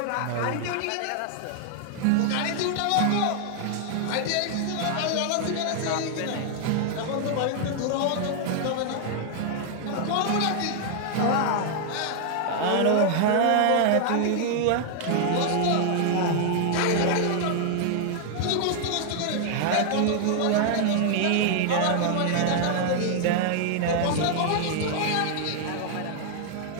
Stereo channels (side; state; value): both; different; correlation 0.00